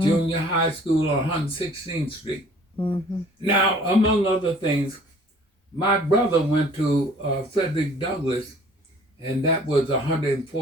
Junior High School on 116th Street. mm-hmm. Now, among other things, my brother went to Frederick Douglass, and that was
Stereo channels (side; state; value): both; normal; correlation 0.53